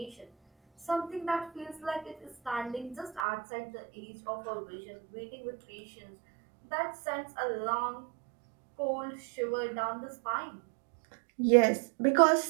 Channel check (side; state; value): left; drops out; at 3.2 s